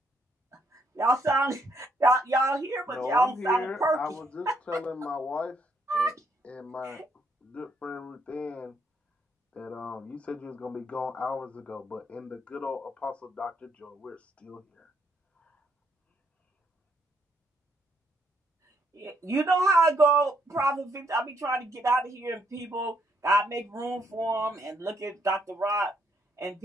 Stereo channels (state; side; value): normal; both; correlation 0.73